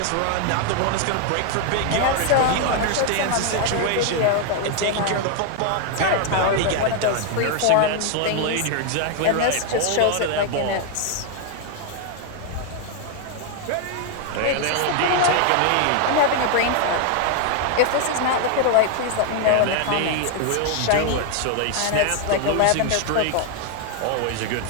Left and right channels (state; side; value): different; both; correlation 0.00